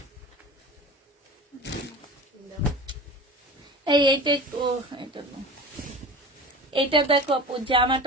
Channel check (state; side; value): normal; both; correlation 0.35